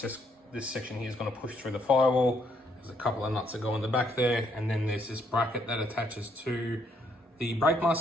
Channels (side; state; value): both; normal; correlation 0.72